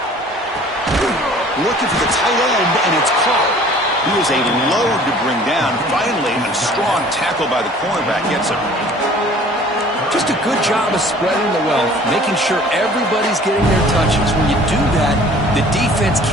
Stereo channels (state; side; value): normal; both; correlation 0.50